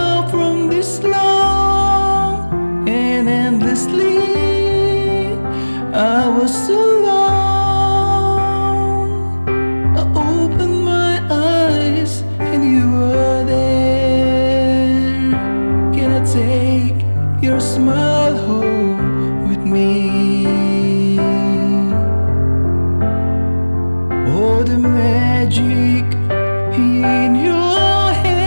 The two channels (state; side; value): inverted; both; correlation -1.00